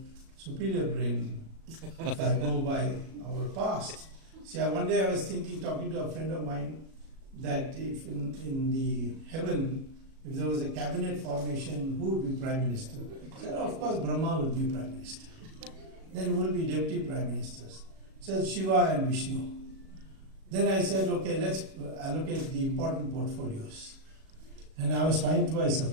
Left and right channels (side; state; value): left; late; 37 ms